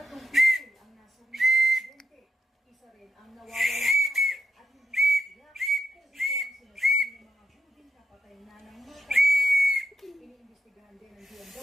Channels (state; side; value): normal; both; correlation 0.83